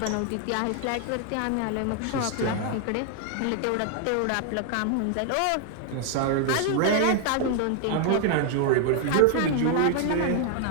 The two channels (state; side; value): different; both; correlation 0.00